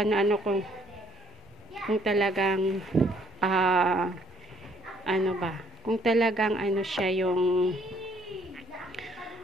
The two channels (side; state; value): both; normal; correlation 0.64